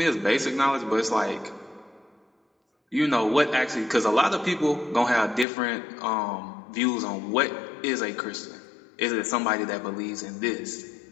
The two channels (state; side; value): drops out; right; at 5.5 s